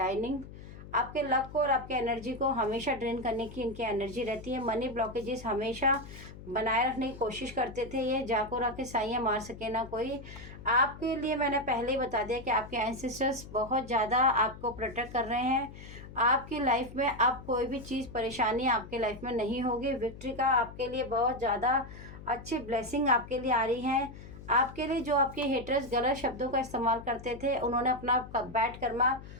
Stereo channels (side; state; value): left; noise; hum, 15 dB below the sound